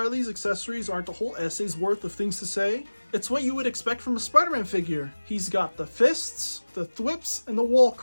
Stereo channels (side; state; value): both; inverted; correlation -1.00